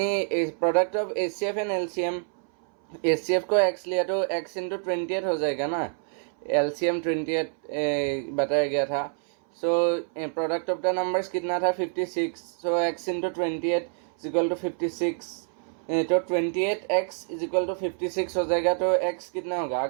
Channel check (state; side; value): silent; left; 60 dB below the other